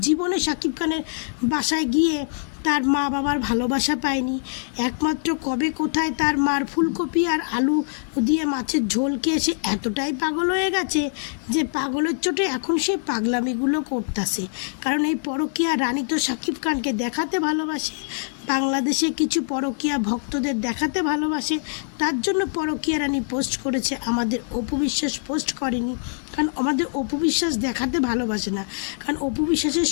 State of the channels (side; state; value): right; silent; 63 dB below the other